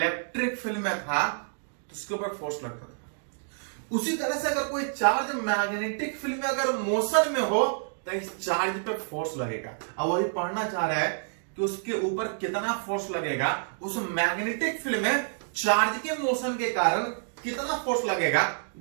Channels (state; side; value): silent; left; digital silence